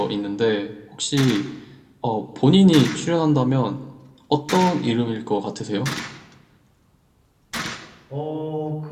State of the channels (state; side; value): identical; both; correlation 1.00